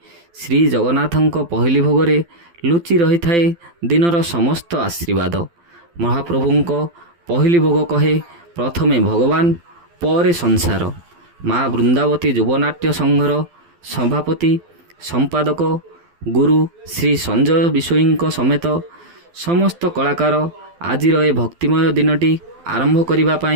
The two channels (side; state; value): left; late; 12 ms